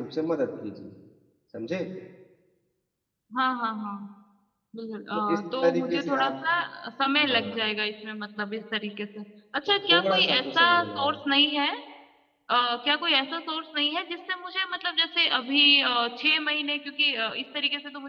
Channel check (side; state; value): both; identical; correlation 1.00